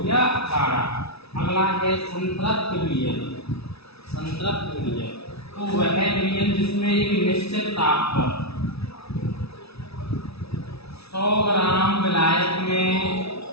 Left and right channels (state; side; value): late; right; 0.78 ms